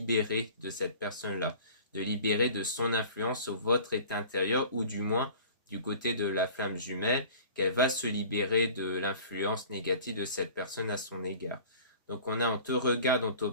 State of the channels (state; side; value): inverted; both; correlation -0.44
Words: de cette personne-là, de libérer de son influence sur votre état intérieur, ou du moins du côté de la flamme jumelle, qu'elle va se libérer de l'influence négative de cette personne à son égard. Donc on te regarde, on